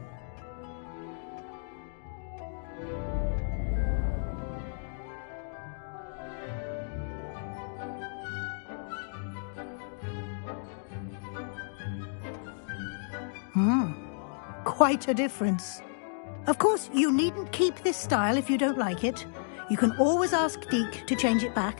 Quite a difference. Of course, you needn't keep this style if you don't like it. You can always ask Deke to change it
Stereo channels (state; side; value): silent; right; digital silence